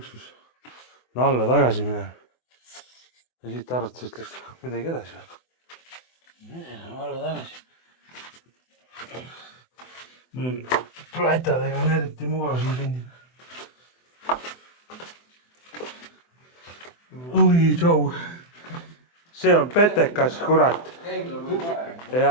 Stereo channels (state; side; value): late; right; 24 ms